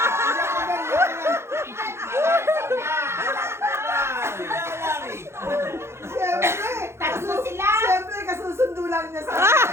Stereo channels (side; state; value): left; late; 0.13 ms